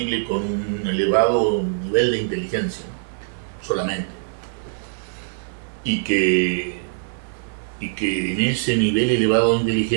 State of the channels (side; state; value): left; silent; digital silence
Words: con un elevado nivel de inteligencia, ¿no?, solamente. Y que en ese nivel elevado de